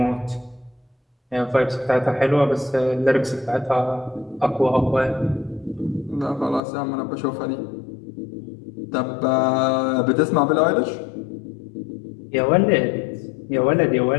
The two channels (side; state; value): right; drops out; at 6.6 s